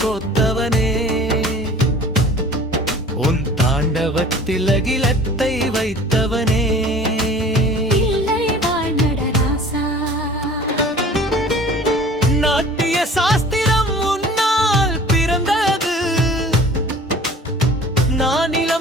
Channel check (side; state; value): both; normal; correlation 0.46